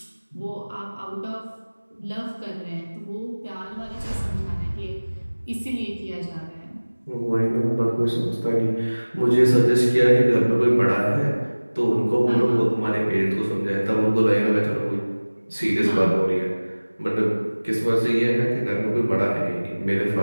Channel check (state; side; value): inverted; both; correlation -1.00